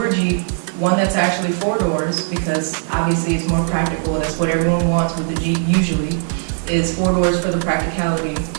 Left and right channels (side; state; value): left; silent; digital silence